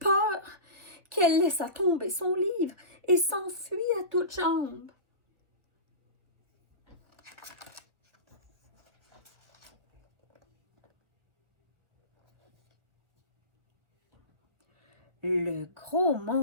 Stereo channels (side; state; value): left; late; 1.2 ms